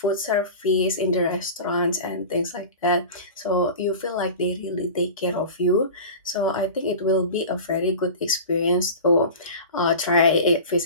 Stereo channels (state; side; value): inverted; both; correlation -0.33